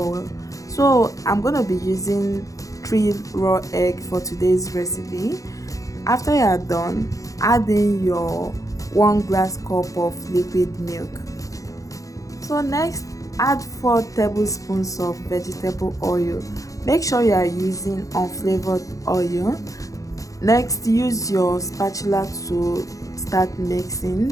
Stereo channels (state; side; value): late; right; 0.16 ms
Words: So I'm going to be using 3 raw eggs for today's recipe. After you are done, add in your 1 glass cup of liquid milk. So next, add 4 tablespoons of vegetable oil. Make sure you are using unflavored oil. Next, use your spatula to start